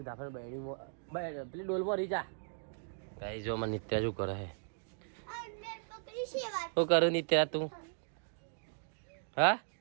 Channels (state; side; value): silent; left; digital silence